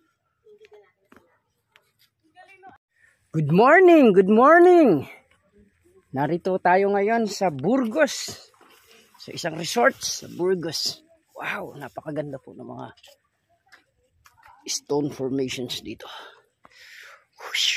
Good morning, good morning. Narito tayo ngayon sa Burgos. Sa isang resort sa Burgos. Wow, napakaganda po ng mga stone formations dito.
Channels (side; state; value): both; identical; correlation 1.00